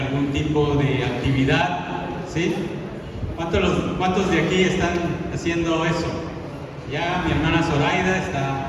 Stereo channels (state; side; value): identical; both; correlation 1.00